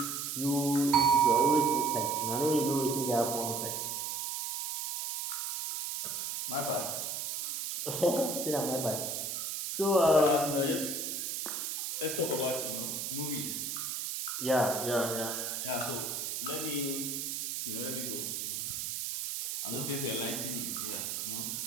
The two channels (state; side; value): noise; right; hiss, 3 dB below the sound